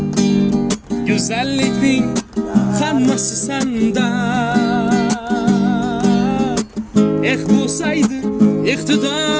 Güzellikning hammasi sanda. Bo'lsaydi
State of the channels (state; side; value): identical; both; correlation 1.00